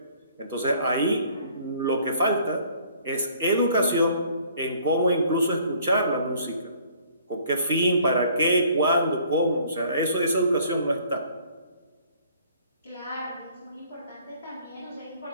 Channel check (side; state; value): both; inverted; correlation -0.57